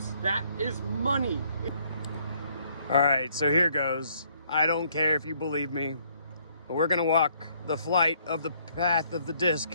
that is money. All right, so here goes. I don't care if you believe me, but we're gonna walk the flight of the path of the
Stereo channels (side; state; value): both; inverted; correlation -0.66